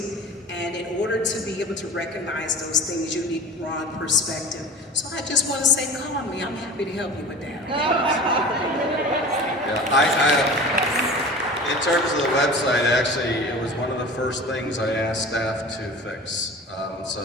and in order to be able to recognize those things, you need broad perspective. So I just want to say, call me. I'm happy to help you with that. Yeah, in terms of the website, actually, it was one of the first things I asked staff to fix.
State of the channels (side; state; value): both; normal; correlation 0.37